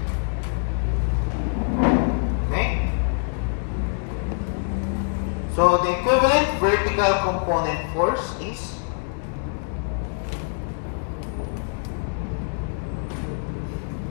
Okay? So the equivalent vertical component force is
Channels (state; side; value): silent; right; 62 dB below the other